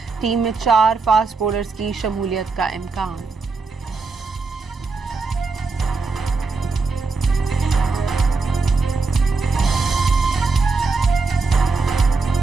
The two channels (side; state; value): left; quieter; 4.1 dB